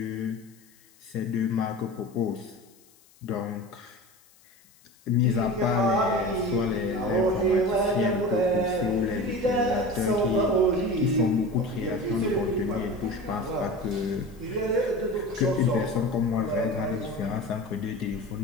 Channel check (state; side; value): noise; left; hiss, 29 dB below the sound